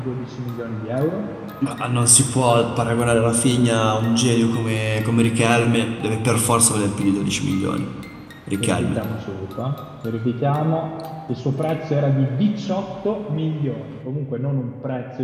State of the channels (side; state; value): both; identical; correlation 1.00